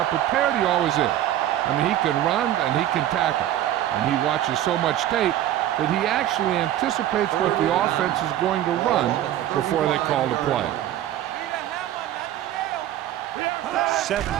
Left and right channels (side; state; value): left; quieter; 12.5 dB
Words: prepared he always is. I mean, he can run and he can tackle, and he watches so much tape that he actually anticipates what the offense is going to run before they call the play. 7